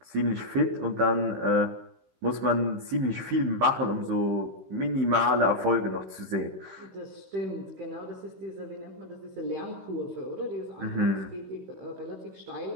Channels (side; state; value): left; late; 16 ms